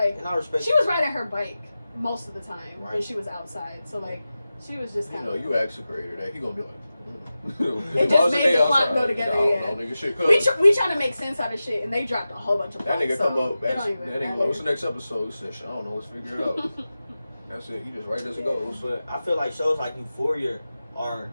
and I respect she was riding her bike most of the time right. when she was outside. So like, she was just kind of. You ask the creator that he gonna be like. It just made the plot go together. Yeah. Nigga, shit we trying to make sense out of shit, and they dropped a whole bunch of plots. That nigga so come up. That nigga, what's the matter. next episode? He said, I don't know. Let's figure it out. That's it. He just right as it goes. But I feel like shows like Euphoria are,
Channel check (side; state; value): both; inverted; correlation -0.94